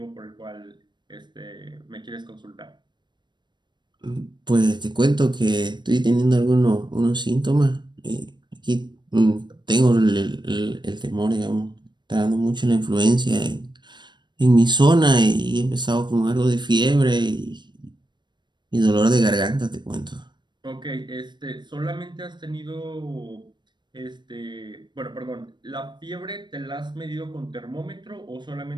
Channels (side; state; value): left; late; 0.22 ms